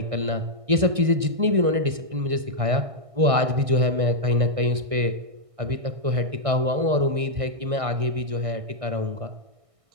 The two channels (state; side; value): late; left; 1.6 ms